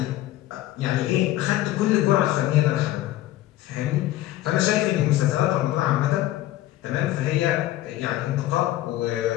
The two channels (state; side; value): quieter; right; 14.8 dB